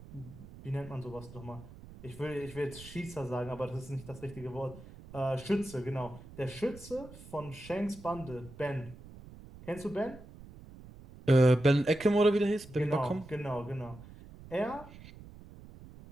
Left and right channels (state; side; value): noise; right; rumble, 17 dB below the sound